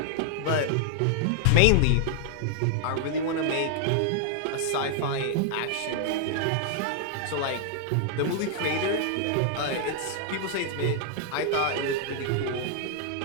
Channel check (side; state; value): both; different; correlation 0.00